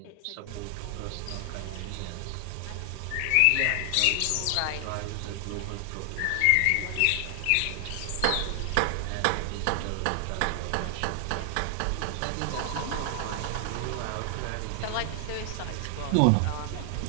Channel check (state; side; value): different; both; correlation 0.00